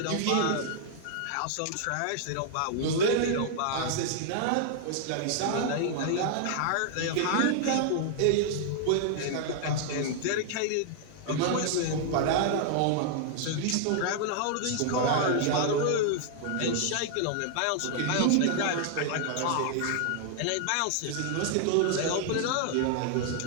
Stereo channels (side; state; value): both; different; correlation 0.00